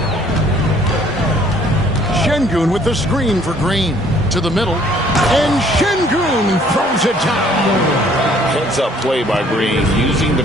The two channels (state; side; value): normal; both; correlation 0.59